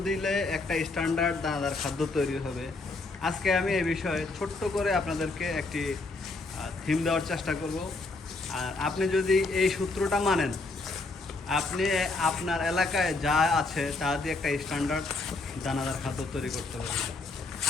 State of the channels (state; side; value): quieter; right; 3.5 dB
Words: দিলে একটা স্ট্যান্ডার্ড দানাদার খাদ্য তৈরি হবে। আজকে আমি এই বিষয়ে ছোট্ট করে আপনাদেরকে একটি থিম দেওয়ার চেষ্টা করব। আর আপনি যদি এই সূত্রটা মানেন, আপনি আপনার এলাকায় যা আছে তা দিয়ে একটা স্ট্যান্ডার্ড দানাদার খাদ্য তৈরি করতে পারবেন।